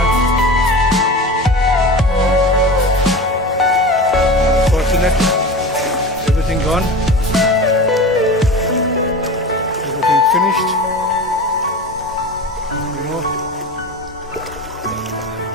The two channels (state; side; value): normal; both; correlation 0.31